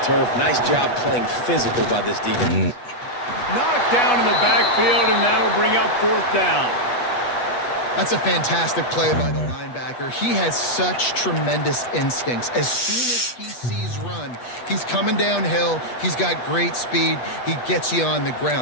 turf. Nice job playing physical by this defense. Knocked down in the backfield, and that'll bring up fourth down. That's a fantastic play by the linebacker. He has such tremendous instincts. As soon as he sees run, he's coming downhill. He's got great speed. He gets you on the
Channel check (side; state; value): right; late; 8.3 ms